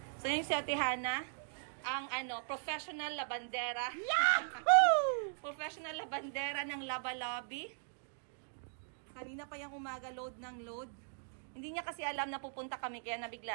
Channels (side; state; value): left; silent; digital silence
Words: So, yung si Ate Hana, ang, professional labandera. Yahoo! Professional labandera ng Laba Lobby. Kanina pa yung umaga, load ng load. Hindi niya kasi alam na pupunta kami, kaya